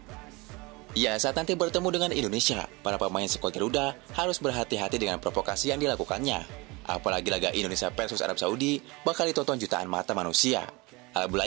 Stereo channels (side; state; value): left; quieter; 24.9 dB